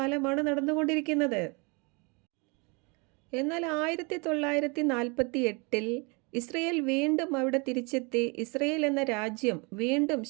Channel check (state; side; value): quieter; left; 30.6 dB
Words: നടന്നുകൊണ്ടിരിക്കുന്നത്. എന്നാൽ 1948 ഇസ്രയേൽ വീണ്ടും അവിടെ തിരിച്ചെത്തി. ഇസ്രയേൽ എന്ന രാജ്യം വീണ്ടും